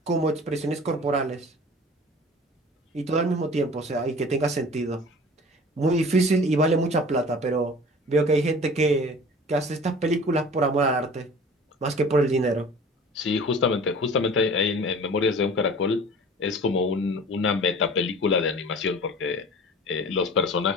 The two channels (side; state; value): both; normal; correlation 0.43